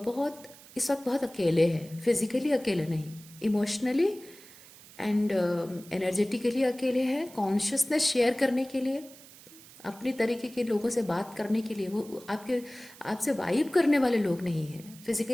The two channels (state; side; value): noise; right; hiss, 21 dB below the sound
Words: बहुत इस वक्त बहुत अकेले हैं, फिजिकली अकेले नहीं, इमोशनली एंड एनर्जेटिकली अकेले हैं। कॉन्शियसनेस शेयर करने के लिए, अपनी तरीके के लोगों से बात करने के लिए, वो आपसे वाइब करने वाले लोग नहीं हैं।